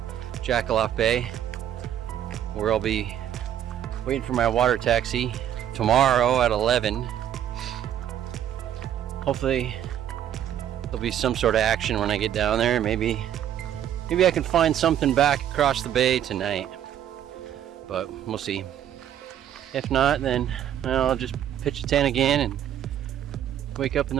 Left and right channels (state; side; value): quieter; left; 10.5 dB